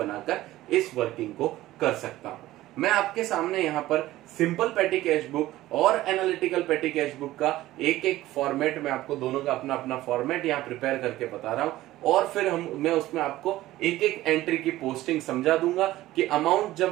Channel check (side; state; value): left; quieter; 15.9 dB